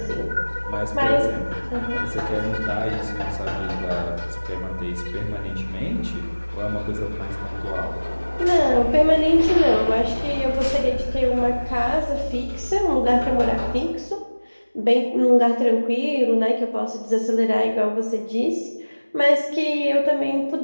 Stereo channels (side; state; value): both; inverted; correlation -1.00